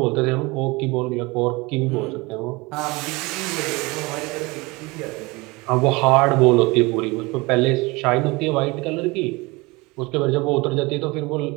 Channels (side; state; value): left; quieter; 24.3 dB